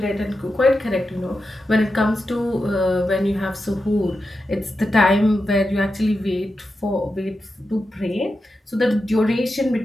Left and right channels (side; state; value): both; normal; correlation 0.89